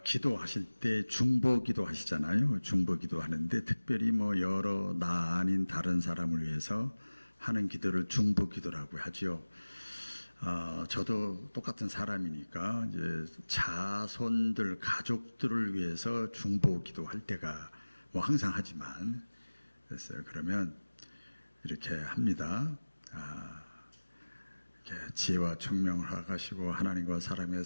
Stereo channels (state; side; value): inverted; both; correlation -1.00